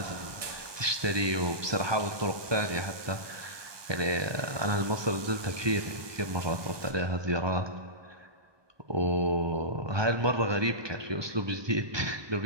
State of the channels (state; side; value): late; left; 1.2 ms